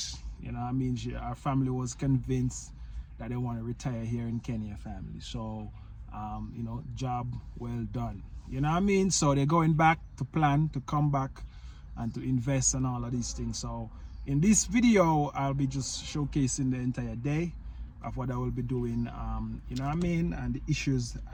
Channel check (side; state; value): both; identical; correlation 1.00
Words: You know what I mean, our family was convinced that they want to retire here in Kenya, family. So, you know, job well done. You know what I mean? So they're going back to plan to come back and to invest and all of these things. So in this video, I'll be just showcasing the entire day of what I will be doing, you know what I mean, and the issues